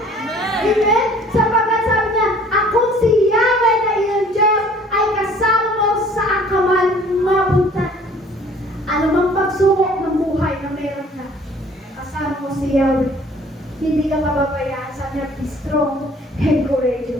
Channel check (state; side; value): normal; both; correlation 0.53